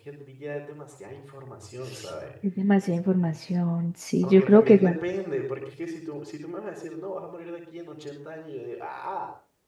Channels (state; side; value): identical; both; correlation 1.00